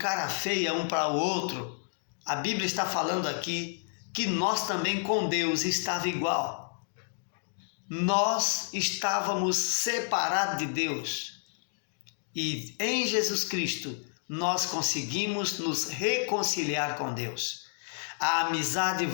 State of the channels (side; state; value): right; silent; digital silence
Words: feia um para o outro. A Bíblia está falando aqui que nós também com Deus estava igual. Nós estávamos separados de Deus. E em Jesus Cristo nós conseguimos nos reconciliar com Deus. A amizade